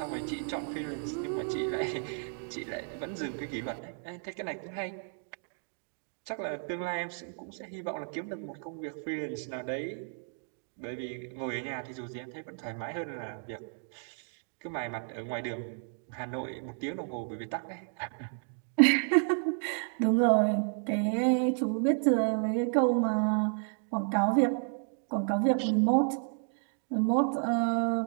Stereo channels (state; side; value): silent; left; 56 dB below the other